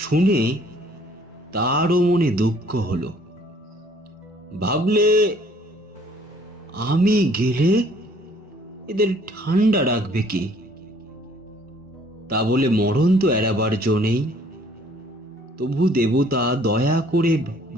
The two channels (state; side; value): normal; both; correlation 0.59